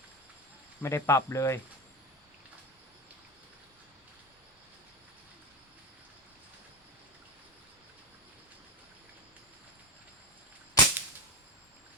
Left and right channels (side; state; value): both; normal; correlation 0.17